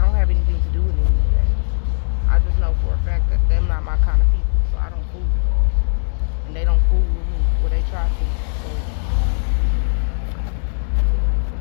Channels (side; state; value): right; silent; digital silence